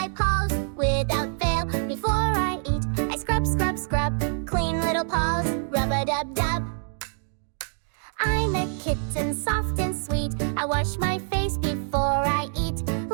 paws without fail. Before I eat, I scrub, scrub, scrub. Clean little paws, rub-a-dub-dub. I'm a kitten, soft and sweet. I wash my face before I eat.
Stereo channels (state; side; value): silent; left; 55 dB below the other